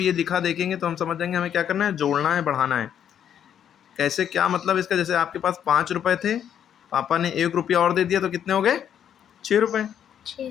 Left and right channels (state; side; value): quieter; right; 9.3 dB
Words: ये लिखा देखेंगे तो हम समझ जाएंगे हमें क्या करना है, जोड़ना है, बढ़ाना है। कैसे, क्या मतलब इसका, जैसे आपके पास 5 रुपये थे, पापा ने 1 रुपया और दे दिया तो कितने हो गए, 6 रुपये।